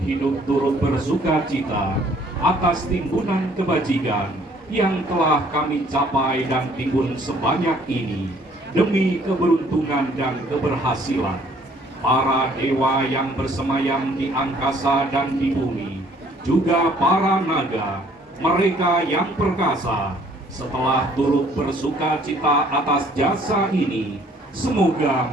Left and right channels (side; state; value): both; normal; correlation 0.60